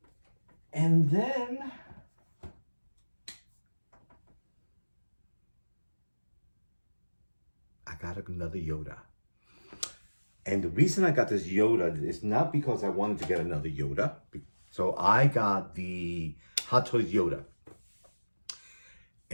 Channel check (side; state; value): both; inverted; correlation -1.00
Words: And then I got another Yoda. And the reason I got this Yoda is not because I wanted to get another Yoda. So I got the Hot Toys Yoda.